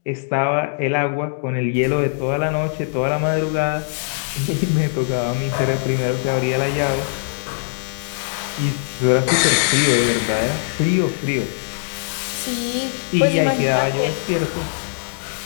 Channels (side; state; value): right; silent; digital silence